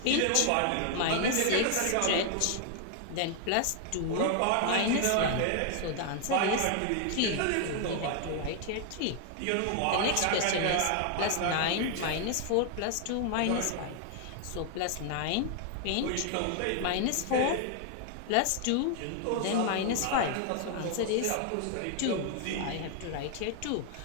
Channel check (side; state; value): both; different; correlation 0.00